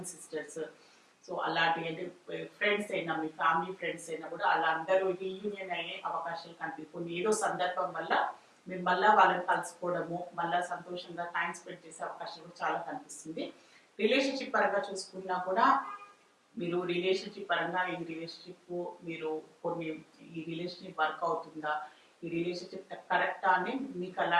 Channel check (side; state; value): both; identical; correlation 1.00